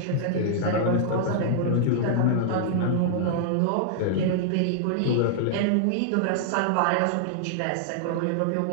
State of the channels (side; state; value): both; different; correlation -0.01